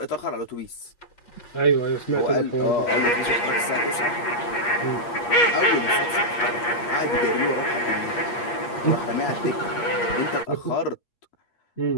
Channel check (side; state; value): right; late; 8.5 ms